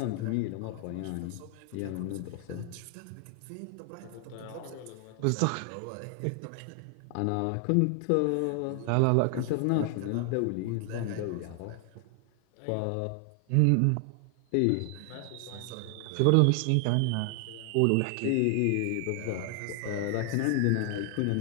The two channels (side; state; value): both; different; correlation 0.00